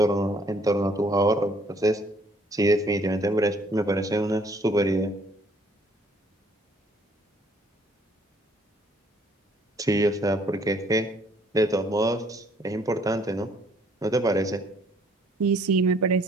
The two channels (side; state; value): both; normal; correlation 0.62